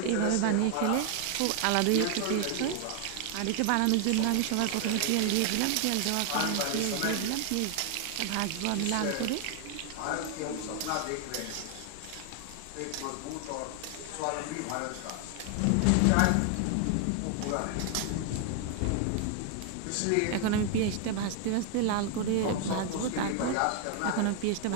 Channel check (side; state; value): both; different; correlation 0.00